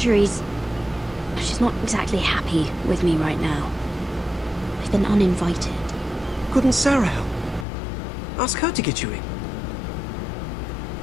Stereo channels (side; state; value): right; drops out; at 7.7 s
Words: she's not exactly happy with me right now. I've been uninvited. Couldn't Sarah help? Ask her to get you in.